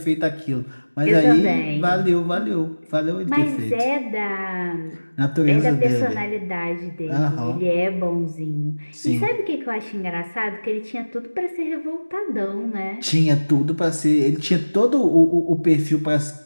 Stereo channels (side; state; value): both; inverted; correlation -1.00